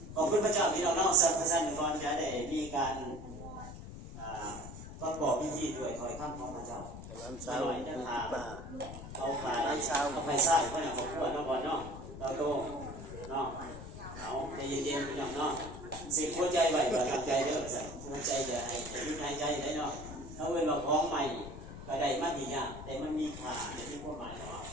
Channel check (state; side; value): noise; left; rumble, 11 dB below the sound